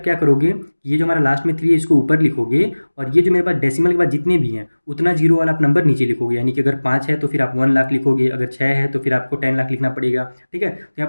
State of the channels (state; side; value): inverted; both; correlation -1.00